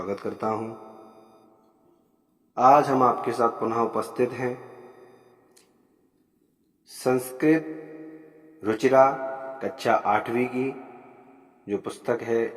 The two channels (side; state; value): both; identical; correlation 1.00